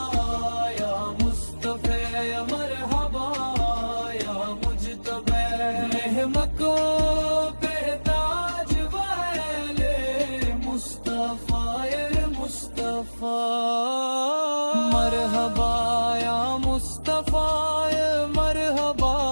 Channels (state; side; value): inverted; both; correlation -1.00